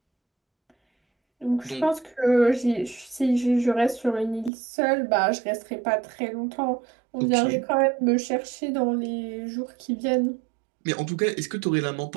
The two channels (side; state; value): left; drops out; at 4.5 s